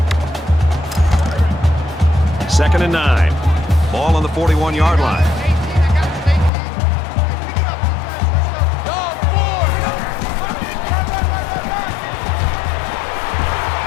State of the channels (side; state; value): right; drops out; at 6.5 s